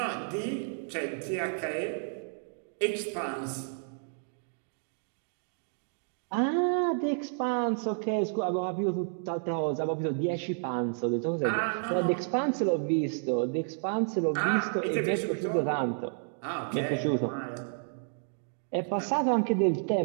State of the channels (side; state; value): left; silent; digital silence